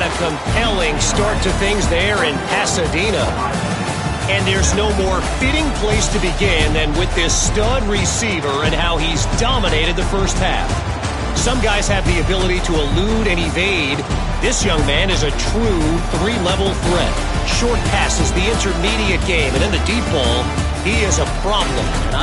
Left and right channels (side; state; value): both; identical; correlation 1.00